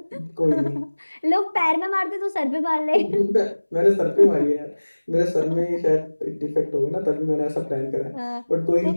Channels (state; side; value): inverted; both; correlation -1.00